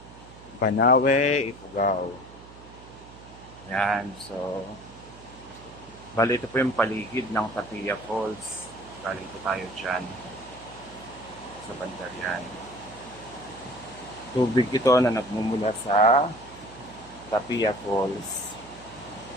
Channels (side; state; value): right; noise; hum, 19 dB below the sound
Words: Banawe, Ifugao. Yan, so bali ito po yung paligid ng Tapia Falls. Bali ito tayo dyan sa bandar yan. Tubig ito na nagmumula sa Tapia Falls.